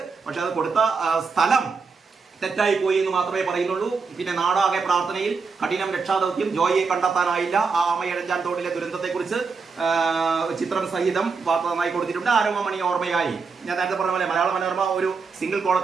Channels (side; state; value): left; quieter; 4.9 dB